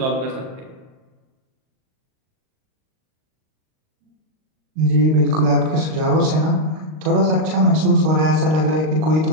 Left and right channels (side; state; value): left; late; 38 ms